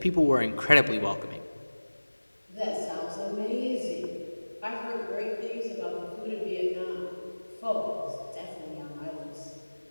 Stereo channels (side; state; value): both; inverted; correlation -1.00